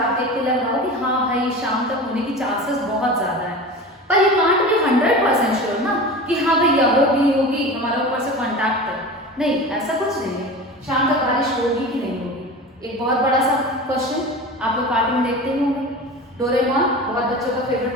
देख के लग रहा हो कि हाँ भाई शाम तक होने की चांसेस बहुत ज़्यादा है, पर यू कांट बी 100% श्योर ना कि हाँ भैया होगी, हमारे ऊपर से कॉन्टैक्ट है, नहीं ऐसा कुछ नहीं है। शाम तक बारिश होगी कि नहीं होगी। एक बहुत बड़ा सा क्वेश्चन, आप लोग कार्टून देखते ही होंगे, डोरेमोन बहुत बच्चों का फेवरेट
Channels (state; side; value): normal; both; correlation 0.32